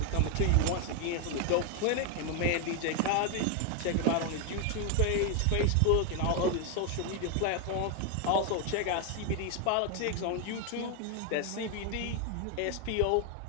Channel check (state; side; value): different; both; correlation 0.01